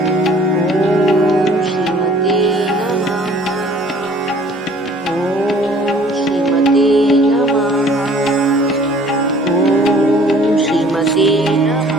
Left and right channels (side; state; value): both; normal; correlation 0.54